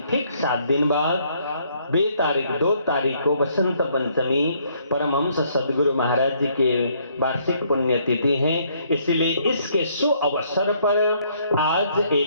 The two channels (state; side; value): inverted; both; correlation -0.67